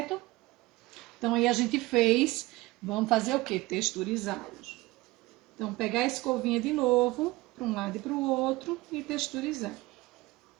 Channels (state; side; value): quieter; left; 20.6 dB